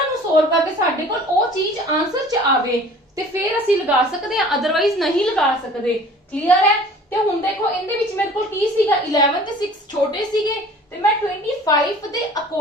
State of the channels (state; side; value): normal; both; correlation 0.47